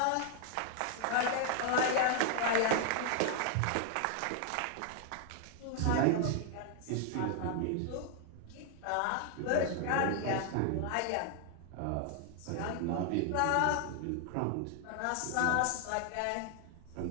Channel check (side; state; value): both; different; correlation 0.00